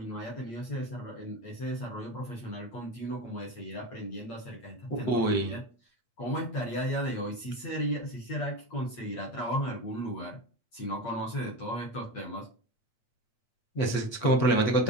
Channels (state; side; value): late; right; 8.6 ms